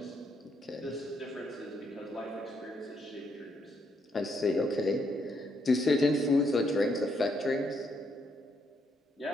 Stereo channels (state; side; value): normal; both; correlation 0.75